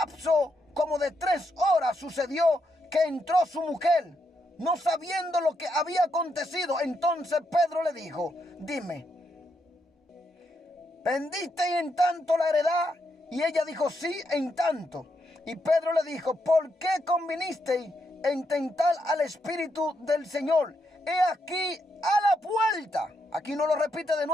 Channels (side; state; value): both; normal; correlation 0.80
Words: como de 3 horas, sucedió que entró su mujer, no sabiendo lo que había acontecido. Entonces Pedro le dijo: dime, ¿vendiste en tanto la heredad? Y ella dijo: sí, en tanto. Y Pedro le dijo: ¿por qué convinisteis en tentar al Espíritu del Señor? He aquí a la puerta, aquí no lo repite de